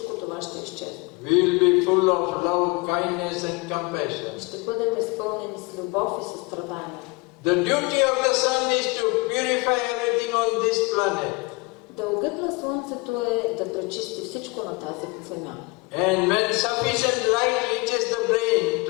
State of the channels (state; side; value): quieter; right; 26.5 dB